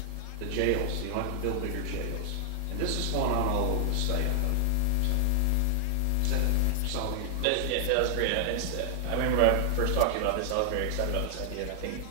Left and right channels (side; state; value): both; different; correlation 0.00